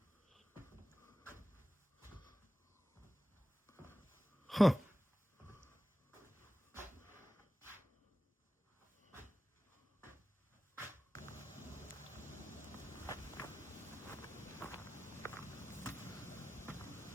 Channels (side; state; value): both; normal; correlation 0.95